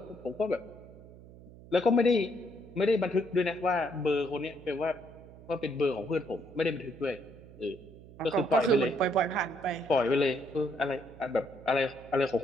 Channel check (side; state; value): right; noise; hum, 19 dB below the sound